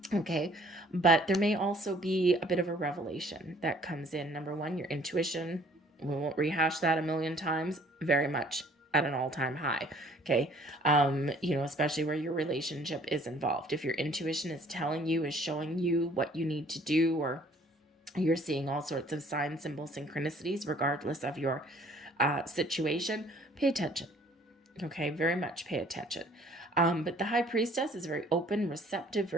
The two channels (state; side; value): normal; both; correlation 0.57